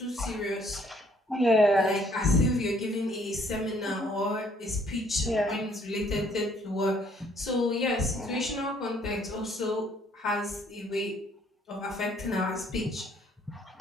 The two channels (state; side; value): normal; both; correlation 0.63